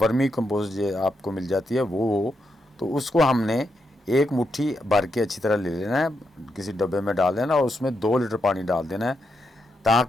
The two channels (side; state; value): both; normal; correlation 0.83